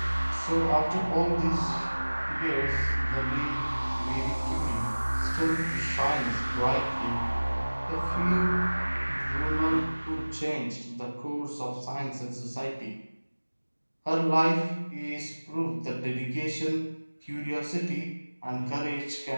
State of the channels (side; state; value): both; inverted; correlation -1.00